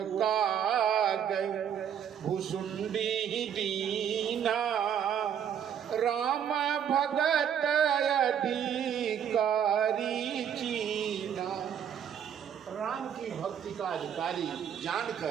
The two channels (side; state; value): left; quieter; 8.7 dB